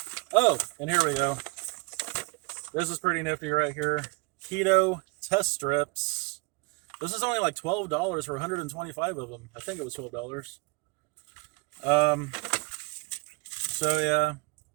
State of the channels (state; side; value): quieter; left; 27.7 dB